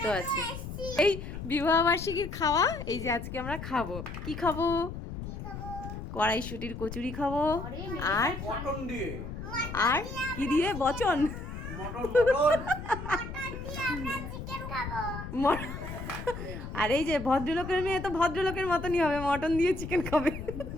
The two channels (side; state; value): left; noise; rumble, 8 dB below the sound